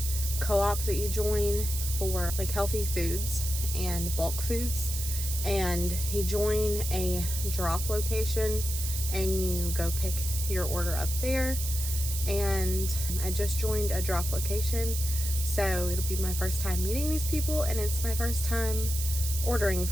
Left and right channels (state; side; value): noise; right; hiss, 5 dB below the sound